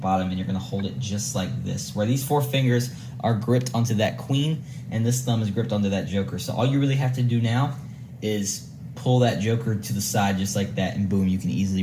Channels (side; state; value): both; identical; correlation 1.00